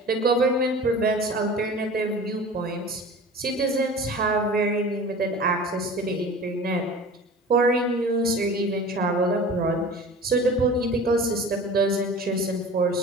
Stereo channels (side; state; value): both; normal; correlation 0.39